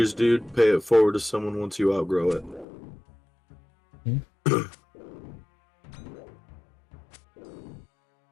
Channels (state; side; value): drops out; right; at 2.7 s